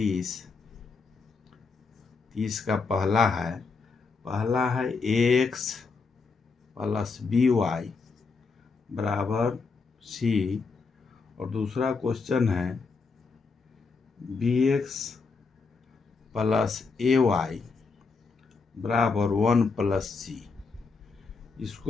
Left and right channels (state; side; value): quieter; right; 4.6 dB